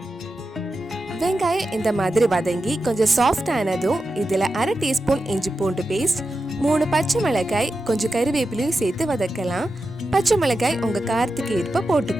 வெங்காயம் இந்த மாதிரி வதங்கி கொஞ்சம் சாஃப்ட் ஆனதும் இதில் 1/2 டீஸ்பூன் இஞ்சி பூண்டு பேஸ்ட், 3 பச்சை மிளகாய், கொஞ்சம் கறிவேப்பிலையும் சேர்த்து வதக்கலாம். பச்சை மிளகாய் உங்கள் காரத்துக்கு ஏற்ப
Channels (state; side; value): normal; both; correlation 0.90